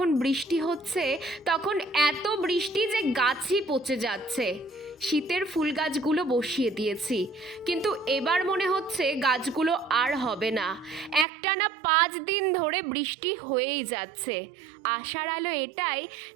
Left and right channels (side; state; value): left; drops out; at 11.2 s